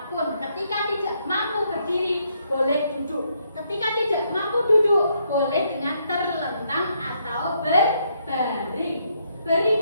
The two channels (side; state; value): both; inverted; correlation -0.74